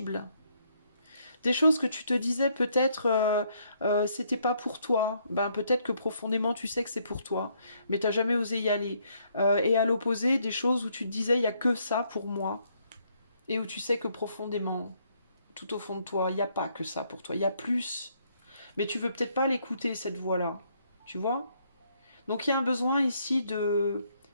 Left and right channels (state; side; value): inverted; both; correlation -0.71